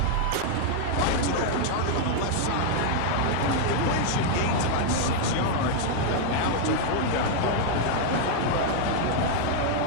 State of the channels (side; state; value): both; different; correlation 0.00